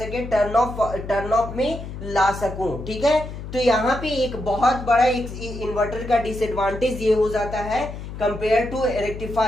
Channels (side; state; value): left; noise; hum, 10 dB below the sound